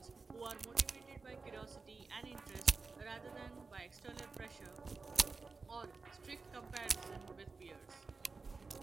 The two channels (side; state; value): left; quieter; 4.3 dB